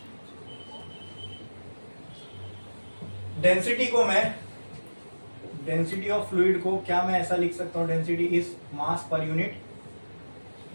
डेंसिटी को मैं, डेंसिटी ऑफ फ्लूइड को क्या मैं ऐसा लिख सकता हूँ? Density is mass per unit,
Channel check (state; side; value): inverted; both; correlation -1.00